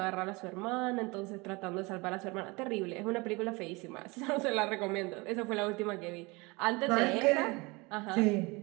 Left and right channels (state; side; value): quieter; left; 25.5 dB